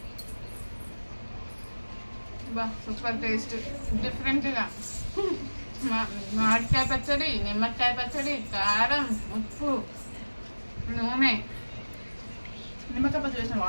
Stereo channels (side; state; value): both; inverted; correlation -1.00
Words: బా సూపర్ టేస్ట్, డిఫరెంట్గా. మామిడికాయ పచ్చడి, నిమ్మకాయ పచ్చడి, కారం, ఉప్పు, నూనె. నిమ్మకాయ పచ్చడి వేసిన